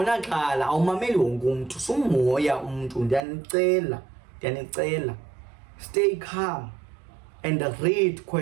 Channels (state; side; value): drops out; left; at 3.2 s